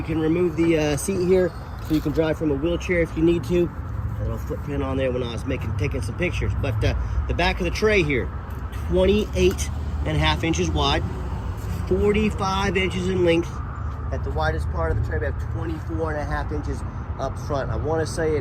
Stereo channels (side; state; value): both; identical; correlation 1.00